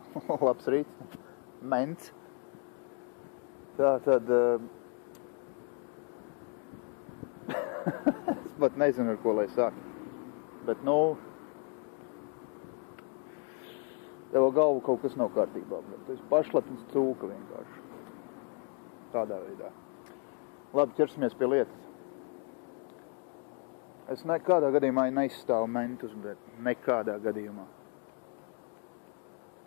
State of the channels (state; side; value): quieter; right; 38.3 dB